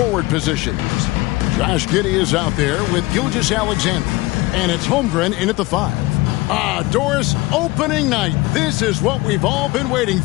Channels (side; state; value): right; quieter; 20.9 dB